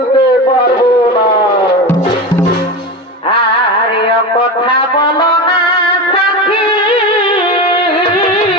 পারবো না। আর কথা বলো না সাথী,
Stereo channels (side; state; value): both; normal; correlation 0.23